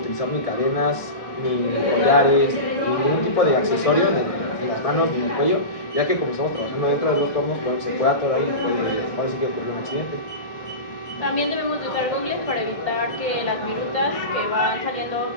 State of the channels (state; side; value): late; right; 1.6 ms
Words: ni cadenas, ni collares, ni ningún tipo de accesorio en las manos ni en el cuello, ya que como estamos trabajando dentro de los tornos, pues, se puede atorar y puede decir que ocurre un accidente. También debemos de usar gogles para evitar que las virutas que van saliendo